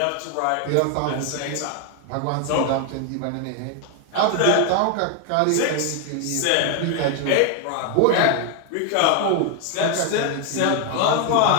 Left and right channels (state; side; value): different; both; correlation 0.01